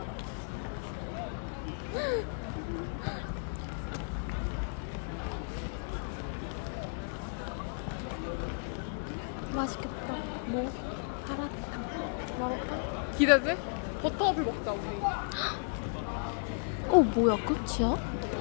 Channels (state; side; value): silent; right; 55 dB below the other